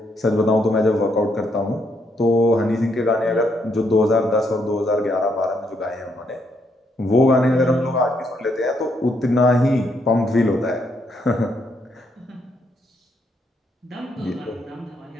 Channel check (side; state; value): both; normal; correlation 0.75